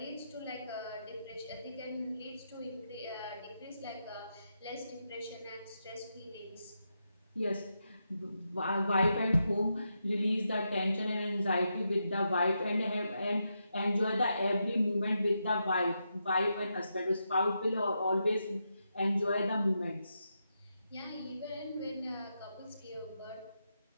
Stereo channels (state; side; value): inverted; both; correlation -0.85